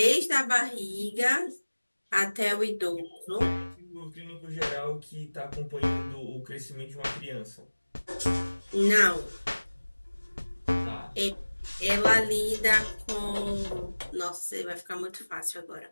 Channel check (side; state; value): both; inverted; correlation -1.00